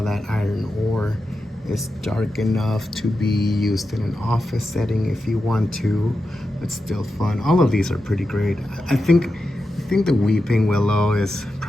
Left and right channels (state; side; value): normal; both; correlation 0.90